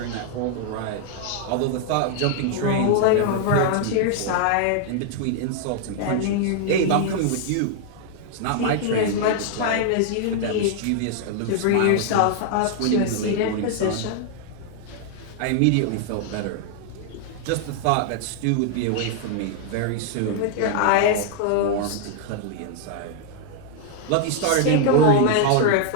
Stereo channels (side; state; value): both; different; correlation 0.00